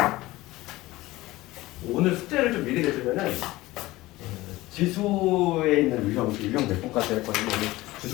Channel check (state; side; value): quieter; right; 18.6 dB